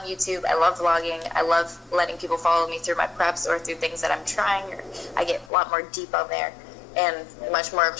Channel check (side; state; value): right; drops out; at 5.5 s